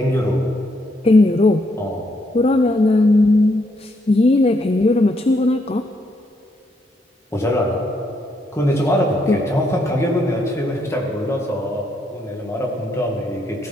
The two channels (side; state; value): both; normal; correlation 0.75